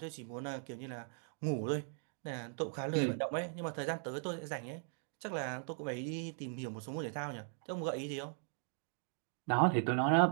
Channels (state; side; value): silent; left; 52 dB below the other